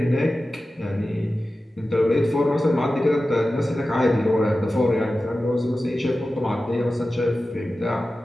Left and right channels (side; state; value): both; normal; correlation 0.94